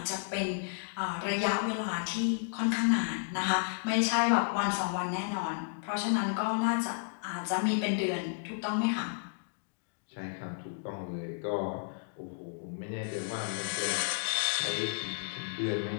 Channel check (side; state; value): right; silent; digital silence